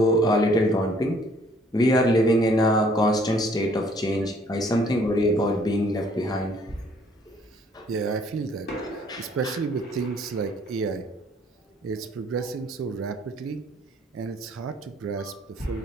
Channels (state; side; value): normal; both; correlation 0.61